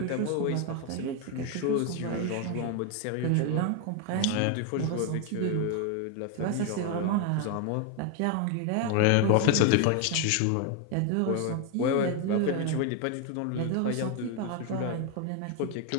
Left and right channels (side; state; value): both; different; correlation 0.01